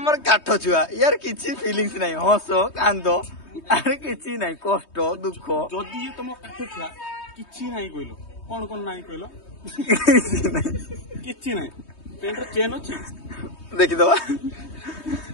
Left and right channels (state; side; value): late; right; 3.2 ms